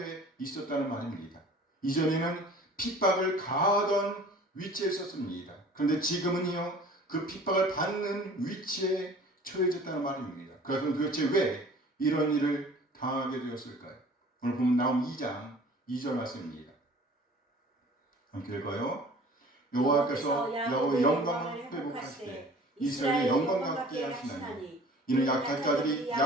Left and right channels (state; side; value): normal; both; correlation 0.47